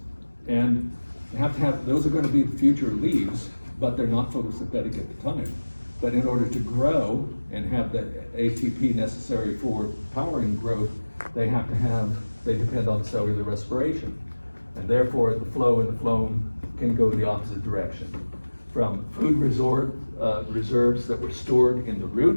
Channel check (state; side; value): inverted; both; correlation -1.00